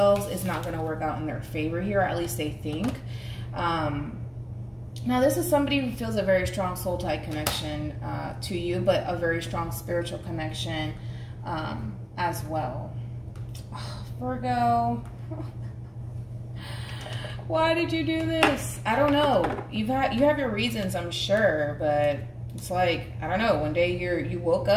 is not going to work out in their favor here, or at least they think. Now, this is somebody who feels a very strong soul tie connection to you, but a very strong spiritual connection as well. Oh, Virgo. Why did you do this? I don't know. You have your reasons, I'm sure, but it's like, I don't know. One day you woke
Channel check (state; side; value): identical; both; correlation 1.00